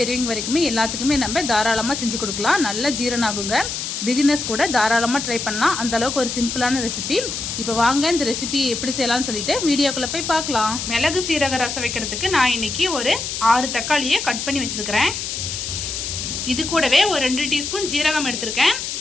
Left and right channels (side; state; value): left; noise; hiss, 4 dB below the sound